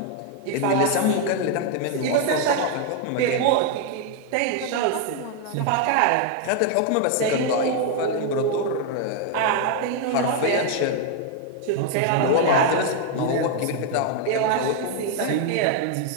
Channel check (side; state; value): both; different; correlation 0.00